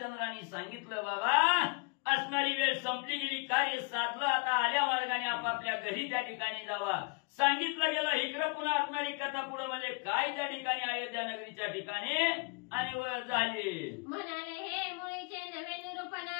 सांगितलं बाबा असणारी वेळ संपली गेली, कार्य साधलं, आता आल्या मार्गाने आपापल्या घरी त्या ठिकाणी जावा. सांगितलं गेलं. इकडं पुन्हा असणारी कथा पुढं म्हणजे काय त्या ठिकाणी अयोध्या नगरीच्या ठिकाणी आणि झाली. म्हणाले हे मुळीचे नवे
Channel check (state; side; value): quieter; right; 32.0 dB